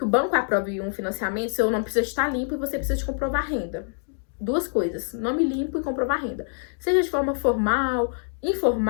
o banco aprove um financiamento, seu nome precisa estar limpo e você precisa de comprovar renda. Duas coisas, nome limpo e comprovar renda. Seja de forma formal,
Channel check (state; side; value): silent; right; digital silence